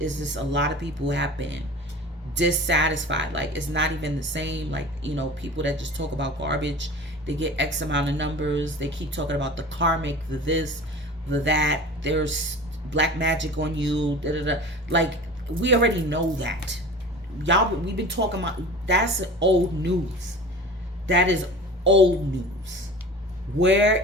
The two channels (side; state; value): both; normal; correlation 0.38